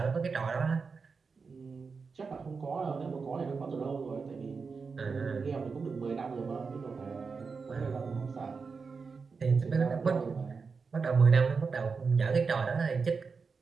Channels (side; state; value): left; quieter; 5.0 dB